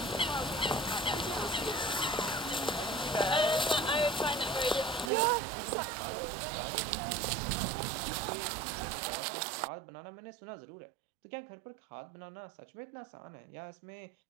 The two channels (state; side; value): drops out; left; at 5.1 s